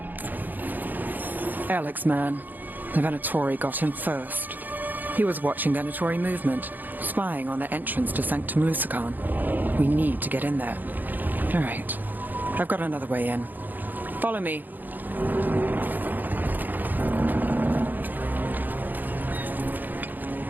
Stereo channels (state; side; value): late; left; 0.086 ms